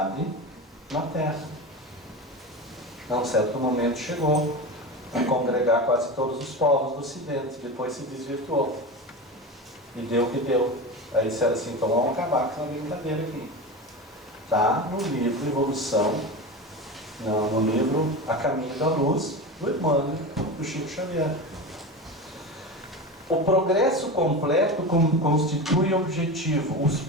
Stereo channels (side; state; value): both; normal; correlation 0.26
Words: na Terra. A um certo momento chegou a congregar quase todos os povos do Ocidente, depois se desvirtuou. E deu o que deu. Aí disseram assim, então vamos acabar com essa brincadeira aqui. Está no livro Evolução, no livro A Caminho da Luz, do Emmanuel, do Chico Xavier. O progresso completo constitui objetivo. Os